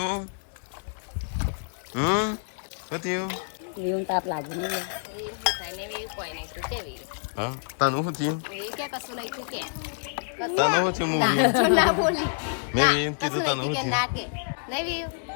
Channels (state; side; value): silent; right; digital silence